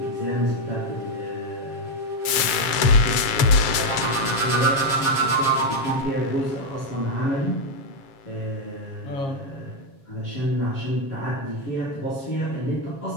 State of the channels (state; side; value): late; right; 7.2 ms